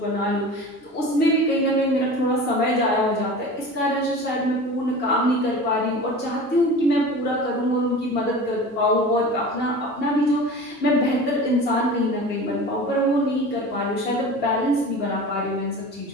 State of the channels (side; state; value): both; normal; correlation 0.36